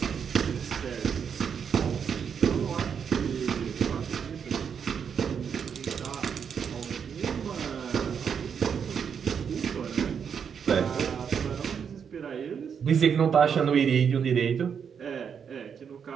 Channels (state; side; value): quieter; left; 7.2 dB